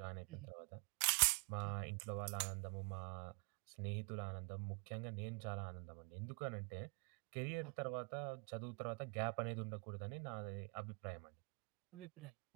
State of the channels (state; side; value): quieter; left; 34.3 dB